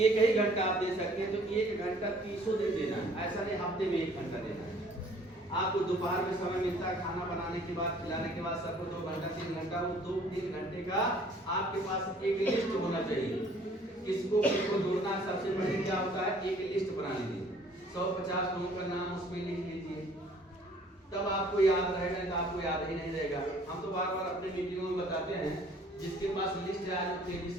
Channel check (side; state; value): both; normal; correlation 0.56